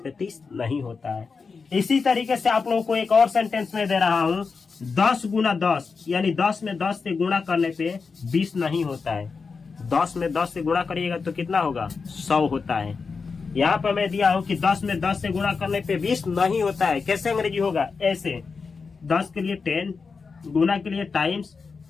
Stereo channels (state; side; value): quieter; right; 4.9 dB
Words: 30 नहीं होता है। इसी तरीके से आप लोगों को एक और सेंटेंस में दे रहा हूं 10 × 10, यानी 10 में 10 से गुणा करने पे 20 नहीं होता है। 10 में 10 से गुणा करिएगा तो कितना होगा? 100 होता है। यहाँ पे मैं दिया हूँ कि 10 में 10 से गुणा करने पे 20 नहीं होता है। कैसे अंग्रेजी होगा? ऐसे 10 के लिए 10, गुना के लिए टाइम्स,